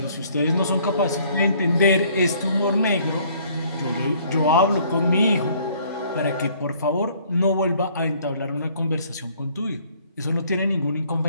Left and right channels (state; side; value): inverted; both; correlation -0.59